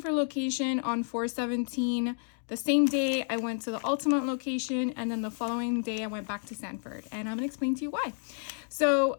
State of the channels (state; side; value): silent; right; 56 dB below the other